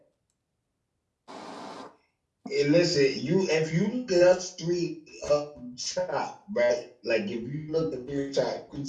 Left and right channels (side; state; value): both; identical; correlation 1.00